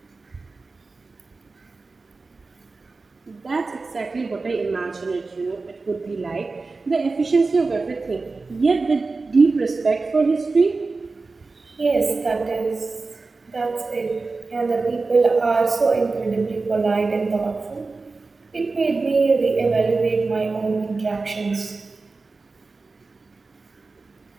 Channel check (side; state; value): left; quieter; 3.8 dB